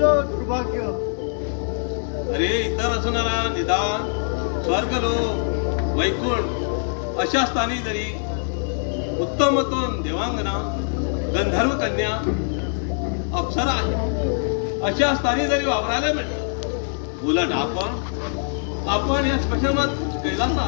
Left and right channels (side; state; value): right; silent; 63 dB below the other